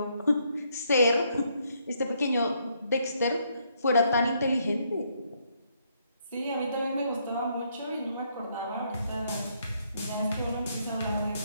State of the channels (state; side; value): inverted; both; correlation -0.72